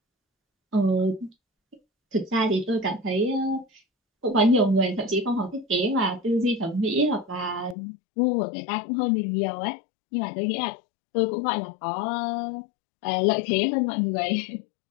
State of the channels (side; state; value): right; drops out; at 7.8 s